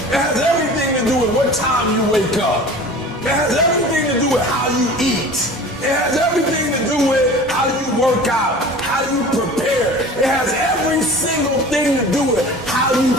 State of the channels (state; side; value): normal; both; correlation 0.40